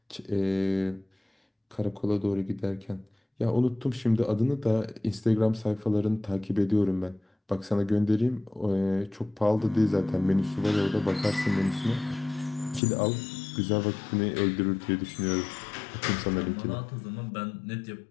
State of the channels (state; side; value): drops out; right; at 12.8 s